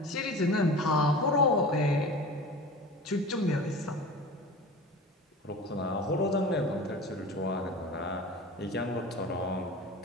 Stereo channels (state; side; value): normal; both; correlation 0.35